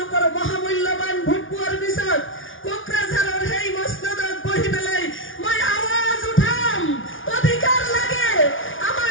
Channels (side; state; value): right; late; 0.57 ms